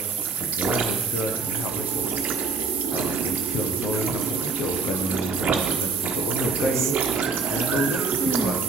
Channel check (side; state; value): left; quieter; 4.1 dB